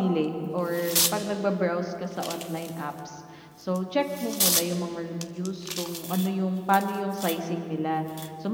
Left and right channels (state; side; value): identical; both; correlation 1.00